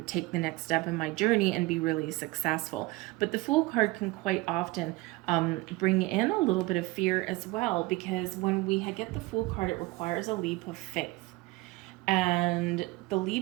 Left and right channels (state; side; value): quieter; left; 21.5 dB